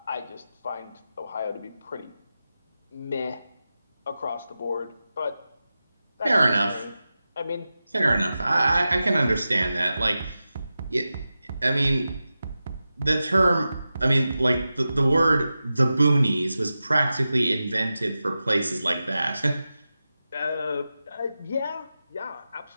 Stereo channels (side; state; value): both; inverted; correlation -0.93